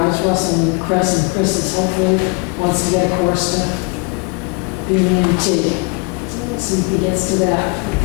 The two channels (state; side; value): quieter; right; 32.4 dB